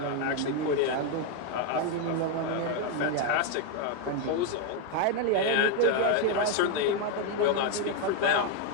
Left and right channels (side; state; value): both; different; correlation 0.01